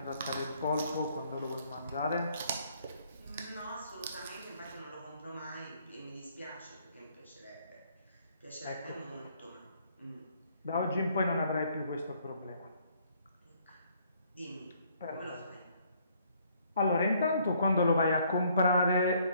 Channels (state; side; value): inverted; both; correlation -0.65